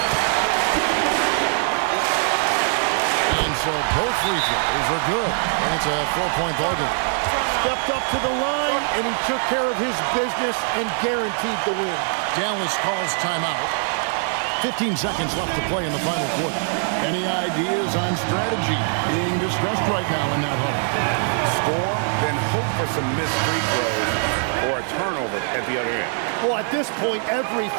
And so both free throws are good, and it's a 4-point ball game. Stepped up to the line, and he took care of his business and guaranteed the win. Dallas calls timeout. 15 seconds left to play in the final quarter. Any ideas on strategy being discussed right now in that huddle? Score, then hope for some missed free throws or a turnover at the other end. Well, at this point,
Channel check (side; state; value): left; silent; 59 dB below the other